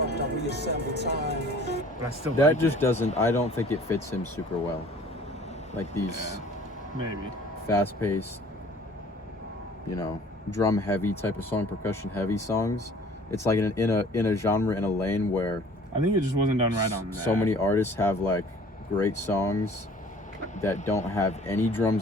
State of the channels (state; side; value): normal; both; correlation 0.51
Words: But I still That like just it. doesn't. I don't think it fits him super well. Like these Maybe. fast paced, drum heavy type of song, percussion heavy songs. It's like in a genre, in a lane where I think it just wasn't done right on that. so many artists have like great songs that don't have any